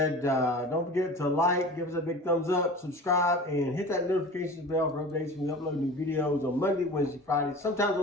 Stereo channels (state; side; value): normal; both; correlation 0.37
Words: don't forget to like, give us a big thumbs up, subscribe, and hit that notifications bell for updates when we upload new videos on Monday, Wednesday, Friday, sometimes